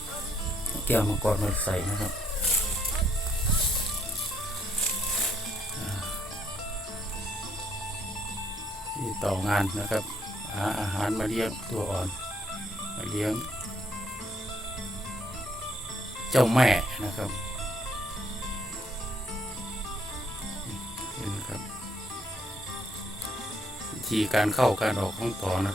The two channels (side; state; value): both; normal; correlation 0.70